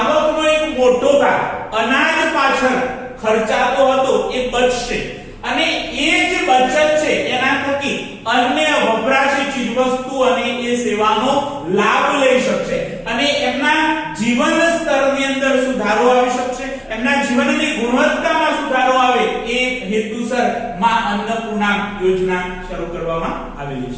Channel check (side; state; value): both; identical; correlation 1.00